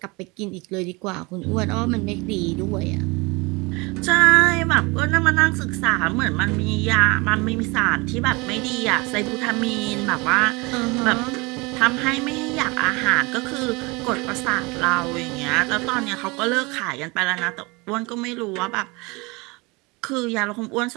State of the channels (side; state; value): left; quieter; 26.0 dB